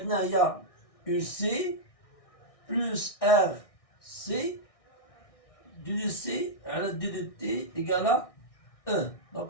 هي UC plus RC du C على D de T égale à E.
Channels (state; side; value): late; right; 1.6 ms